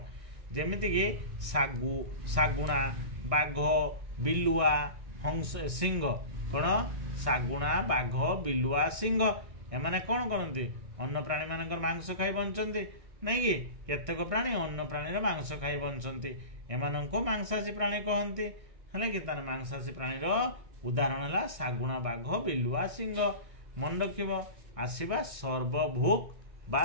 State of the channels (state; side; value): late; left; 1.6 ms